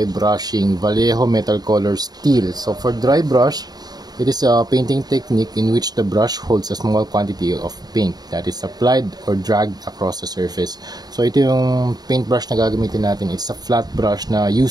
brushing, Vallejo Metal Color Steel. So for dry brush, it is a painting technique in which the brush holds a small quantity of paint that is applied or dragged across the surface. So ito yung paintbrush na gagamitin natin. It's a flat brush na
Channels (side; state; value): left; late; 0.19 ms